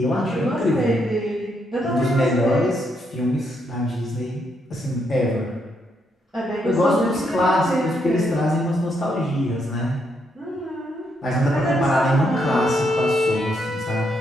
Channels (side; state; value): both; normal; correlation 0.77